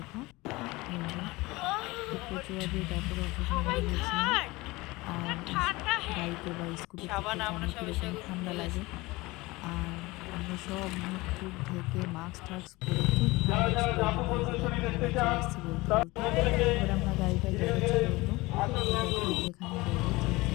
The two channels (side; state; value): right; quieter; 21.6 dB